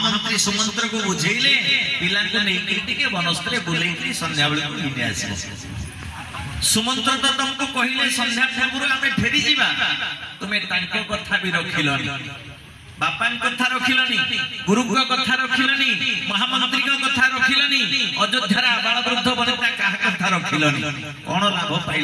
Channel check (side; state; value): both; identical; correlation 1.00